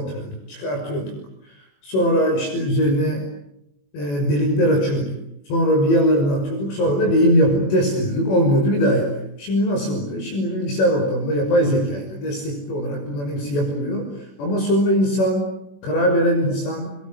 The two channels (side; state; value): right; late; 21 ms